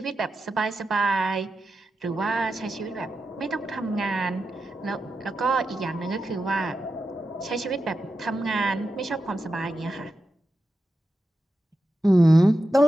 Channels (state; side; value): normal; both; correlation 0.90